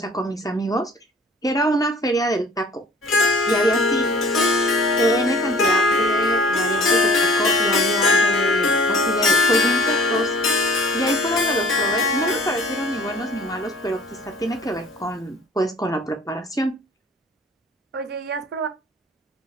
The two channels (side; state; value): both; normal; correlation 0.50